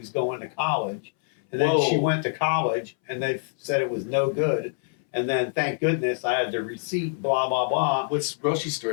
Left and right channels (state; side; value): silent; right; 61 dB below the other